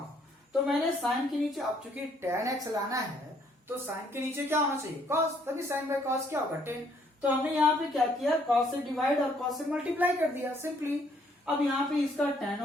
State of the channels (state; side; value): normal; both; correlation 0.67